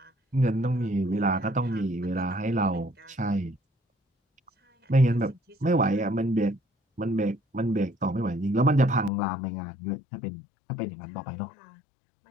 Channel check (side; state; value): right; drops out; at 9.1 s